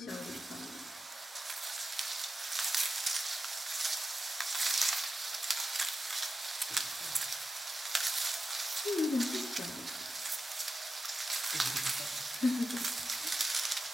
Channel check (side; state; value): both; normal; correlation 0.91